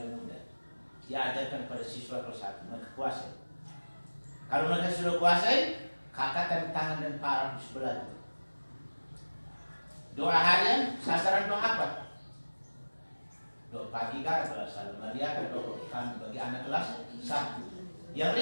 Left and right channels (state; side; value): inverted; both; correlation -1.00